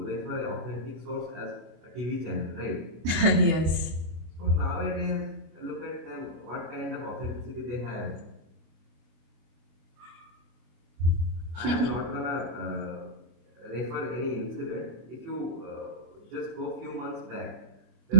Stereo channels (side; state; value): left; late; 24 ms